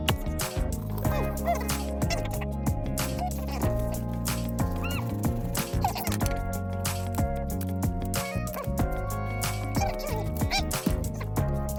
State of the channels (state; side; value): identical; both; correlation 1.00